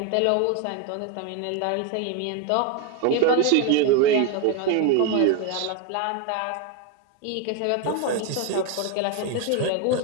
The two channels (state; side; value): different; both; correlation 0.01